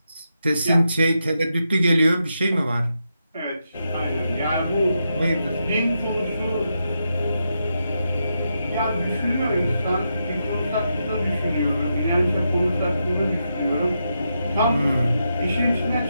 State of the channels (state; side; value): inverted; both; correlation -0.84